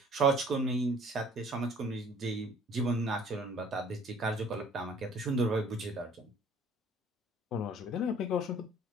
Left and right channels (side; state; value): both; normal; correlation 0.53